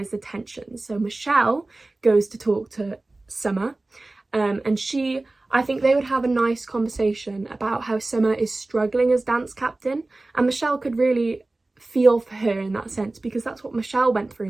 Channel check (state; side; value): quieter; left; 3.0 dB